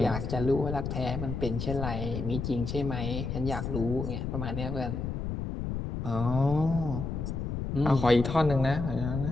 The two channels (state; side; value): noise; left; rumble, 3 dB below the sound